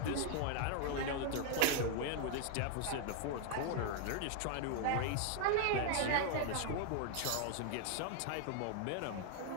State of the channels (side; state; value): both; different; correlation 0.00